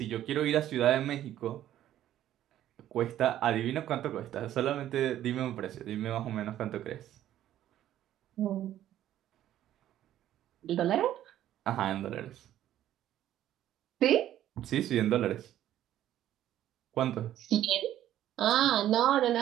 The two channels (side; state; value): left; quieter; 12.3 dB